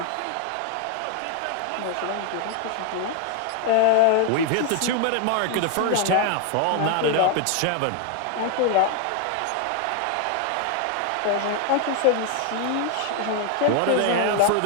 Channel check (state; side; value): different; both; correlation 0.00